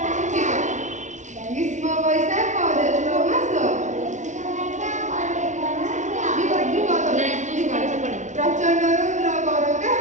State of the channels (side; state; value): left; late; 0.35 ms